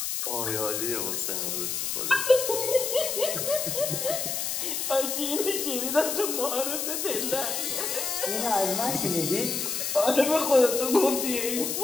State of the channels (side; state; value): left; noise; hiss, 2 dB below the sound